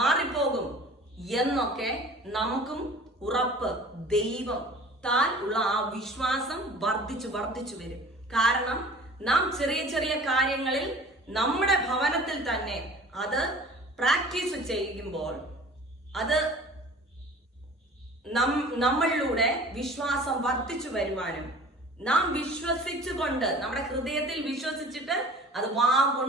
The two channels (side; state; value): both; normal; correlation 0.45